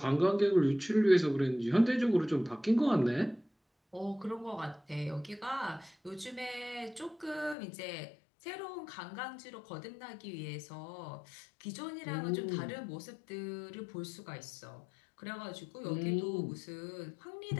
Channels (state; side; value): drops out; right; at 7.6 s